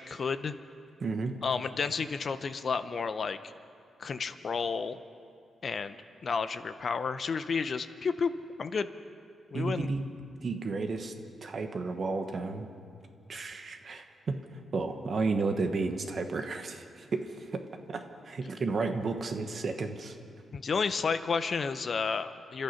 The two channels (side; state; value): both; normal; correlation 0.83